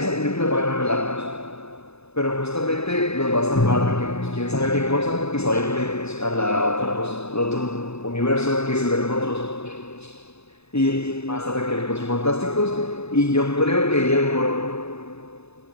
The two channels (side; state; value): right; late; 0.79 ms